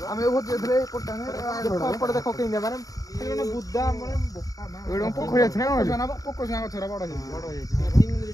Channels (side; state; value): right; late; 0.17 ms